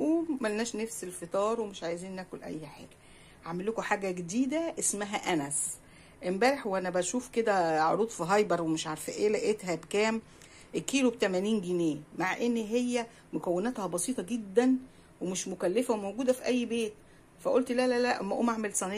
ملناش نفس الفطار ومش عايزين ناكل اي حاجة. هعمل لكم حاجة جديدة اسمها انس. امبارح وانا بشوف كده عروض في هايبر ومش عارفة ايه لقيتها بكام؟ الكيلو ب80 جنيه، مع ان هي مكوناتها بسيطة جدا ومش مكلفة وموجودة في اي بيت. فقلت لا لا لا، اما اقوم اعمل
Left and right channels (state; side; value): identical; both; correlation 1.00